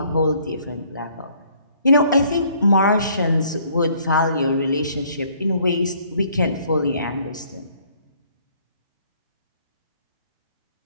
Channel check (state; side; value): inverted; both; correlation -0.62